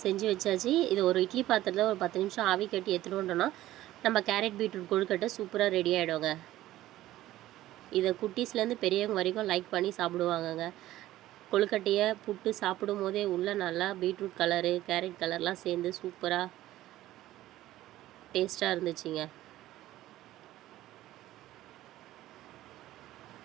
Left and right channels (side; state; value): left; quieter; 15.0 dB